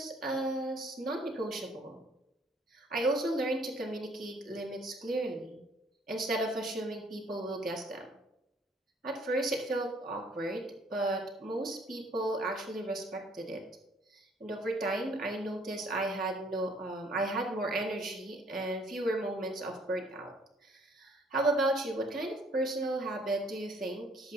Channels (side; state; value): both; normal; correlation 0.61